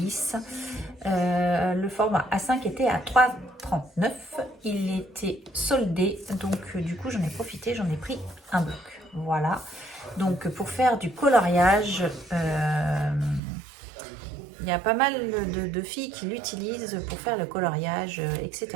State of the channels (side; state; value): left; drops out; at 13.4 s